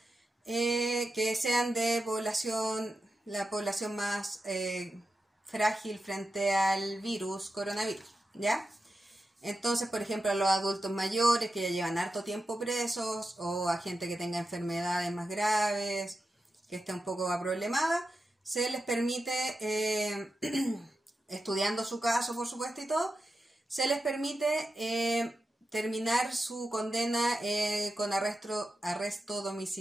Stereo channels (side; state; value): both; normal; correlation 0.90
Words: que sean de la población más frágil frente al coronavirus, ¿ya? Entonces, por ejemplo, a los adultos mayores que ya llevan harto tiempo presos, o a gente que tenga enfermedades más graves, que esté un poco problemada, se les permite, estudiando su caso, por supuesto, y todo, se les permite terminar su condena con arresto